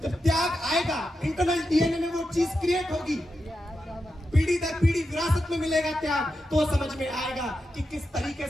जब त्याग आएगा, इंटरनल डीएनए में वो चीज क्रिएट होगी, पीढ़ी दर पीढ़ी विरासत में मिलेगा त्याग, तो समझ में आएगा कि किस तरीके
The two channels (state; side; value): normal; both; correlation 0.88